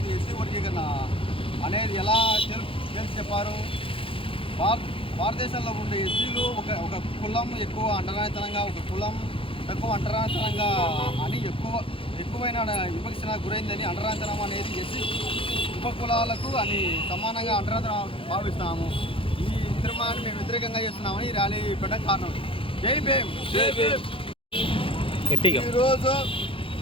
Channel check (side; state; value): right; late; 0.26 ms